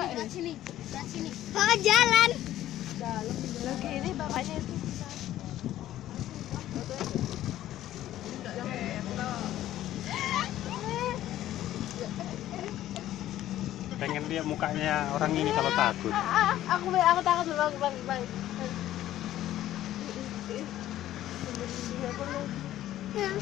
ya? Sini, sini. Bawa jalan. Jalan. Lagi ini bapaknya itu. Pengen lihat mukanya orang ini kalau takut. Aku takut bang.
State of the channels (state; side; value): quieter; right; 13.3 dB